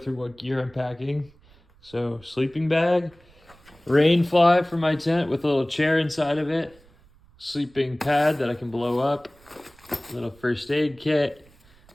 what gear I'm packing. So sleeping bag, rain fly for my tent with a little chair inside of it, sleeping pad that I can blow up, little first aid kit,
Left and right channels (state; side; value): noise; right; rumble, 28 dB below the sound